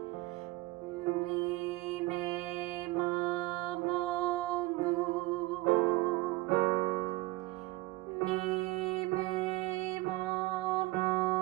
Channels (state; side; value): quieter; left; 20.3 dB